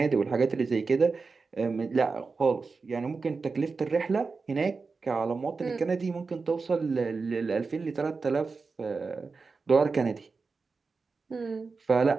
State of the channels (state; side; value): quieter; left; 4.4 dB